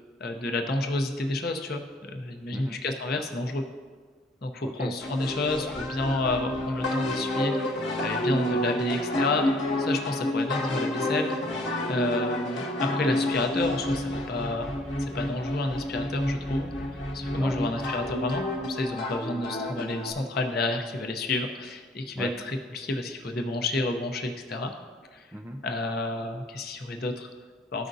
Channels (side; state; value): both; normal; correlation 0.59